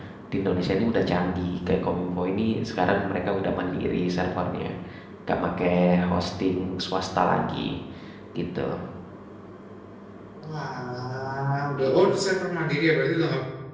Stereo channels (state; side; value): identical; both; correlation 1.00